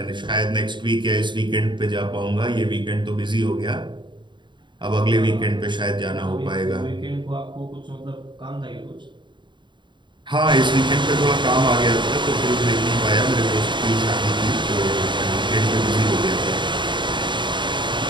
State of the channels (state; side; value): late; left; 0.23 ms